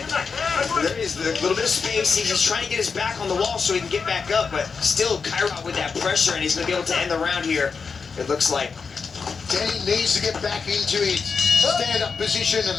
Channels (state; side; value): quieter; right; 5.3 dB